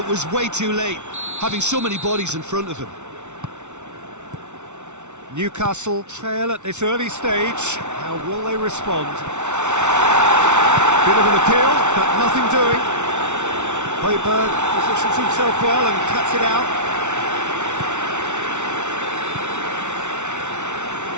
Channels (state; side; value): late; left; 0.83 ms